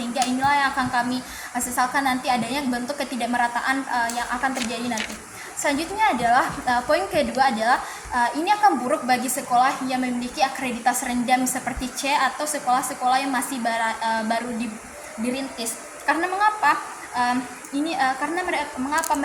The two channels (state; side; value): identical; both; correlation 1.00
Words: inilah yang akan kami sesalkan nanti adanya bentuk ketidakmerataan yang akan terjadi nanti. Selanjutnya adalah poin kedua adalah ini akan buruk bagi sekolah yang memiliki akreditas rendah seperti C atau sekolah-sekolah yang masih baru dirintis. Karena mengapa? Mengapa